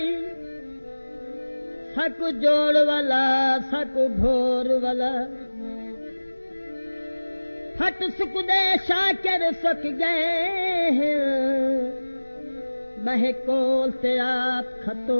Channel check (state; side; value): inverted; both; correlation -1.00